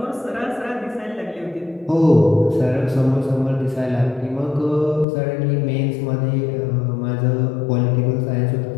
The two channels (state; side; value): drops out; right; at 5.1 s